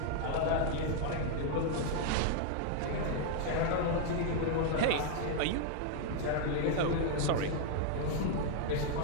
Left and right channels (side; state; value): both; different; correlation 0.00